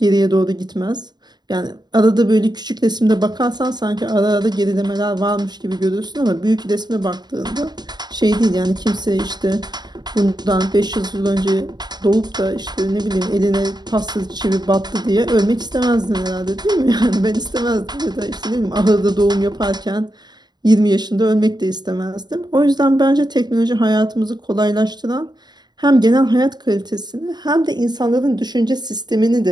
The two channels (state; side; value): late; left; 0.20 ms